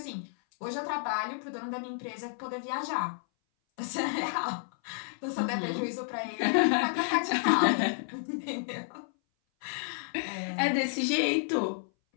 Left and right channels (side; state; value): right; silent; 57 dB below the other